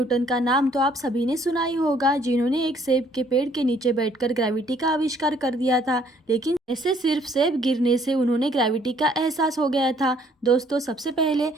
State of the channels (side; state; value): both; normal; correlation 0.63